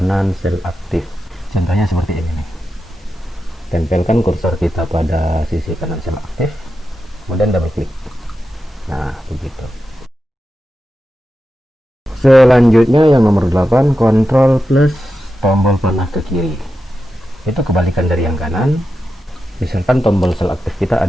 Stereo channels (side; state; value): both; normal; correlation 0.90